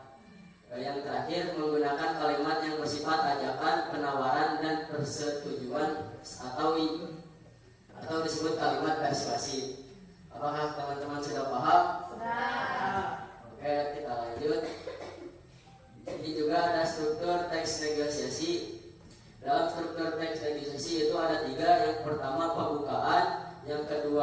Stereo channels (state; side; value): identical; both; correlation 1.00